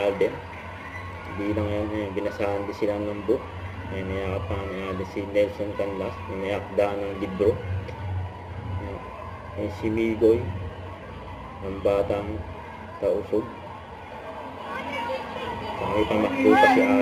Hindi lang yan, binasahan din sila ng book. May niyakapan ni Alden si Nelson Canlas, may akda ng libro. Si Migoy, ang batang tausog. May pamakbo pa si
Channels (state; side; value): identical; both; correlation 1.00